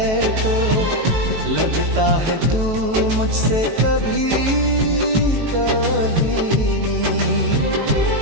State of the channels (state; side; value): late; left; 18 ms